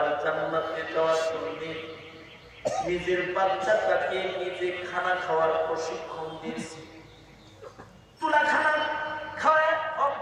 জান্নাতে যাওয়ার জন্য নিজের বাচ্চাটাকে নিজে খানা খাওয়ার প্রশিক্ষণ দিয়েছে, তুলা খানা খাওয়ায়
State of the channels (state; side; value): identical; both; correlation 1.00